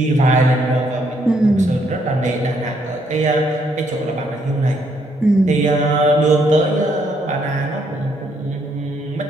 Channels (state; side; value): normal; both; correlation 0.72